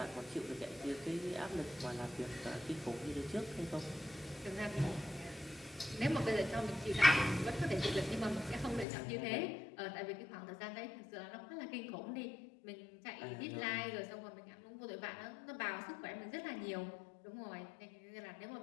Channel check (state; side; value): drops out; right; at 8.8 s